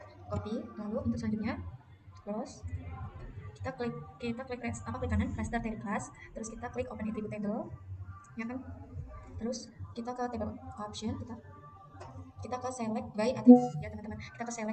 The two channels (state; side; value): identical; both; correlation 1.00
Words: lalu untuk selanjutnya close, kita klik klik kanan raster table class, terus kita klik open attribute table ya kan, terus kita ke table option, kita ke select by attribute ya teman-teman, kita ke